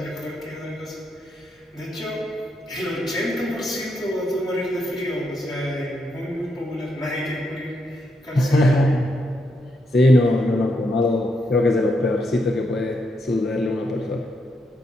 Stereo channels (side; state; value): both; normal; correlation 0.80